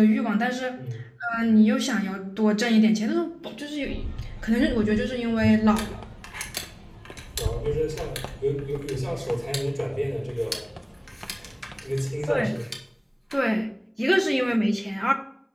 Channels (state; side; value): identical; both; correlation 1.00